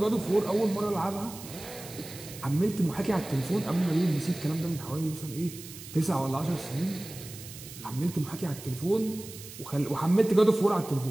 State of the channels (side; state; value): right; noise; hiss, 14 dB below the sound